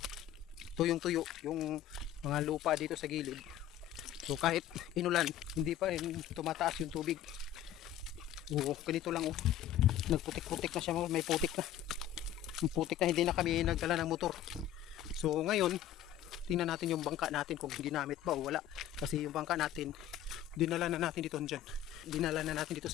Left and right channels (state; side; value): quieter; right; 11.4 dB